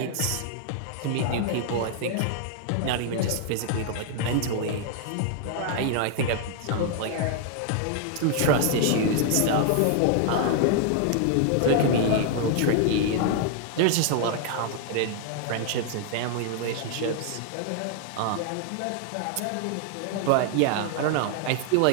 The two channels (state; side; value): different; both; correlation 0.00